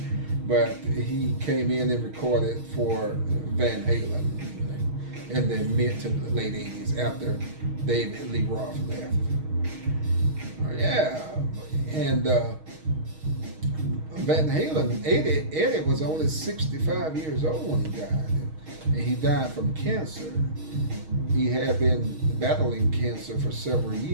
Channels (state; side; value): late; left; 6.4 ms